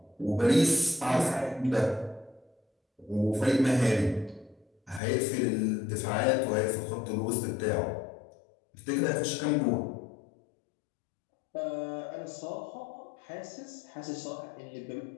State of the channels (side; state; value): right; drops out; at 5.0 s